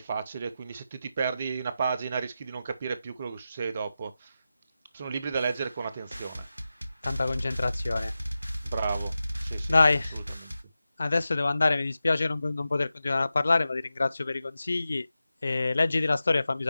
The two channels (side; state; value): both; inverted; correlation -0.93